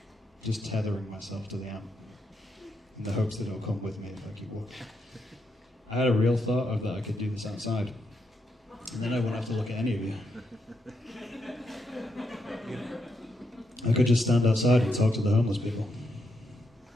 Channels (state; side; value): normal; both; correlation 0.81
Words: Just tethering myself to the amp in the hopes that it'll come with me if I keep walking. I had a real thought of that I could do this outside. And then I won't have to look at any of you. I could just stand outside and talk to the homeless people